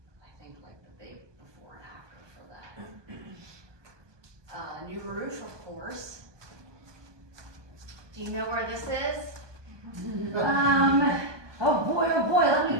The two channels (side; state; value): left; late; 1.2 ms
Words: I think, like the big before and after for that. New roof, of course. Do you know where this is? Oh boy, let me